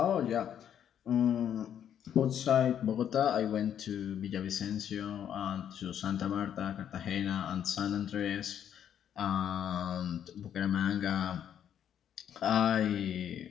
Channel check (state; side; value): quieter; right; 9.5 dB